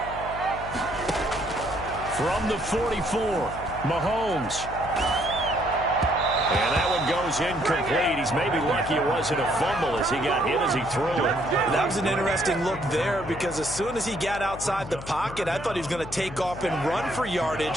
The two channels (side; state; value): left; noise; hum, 12 dB below the sound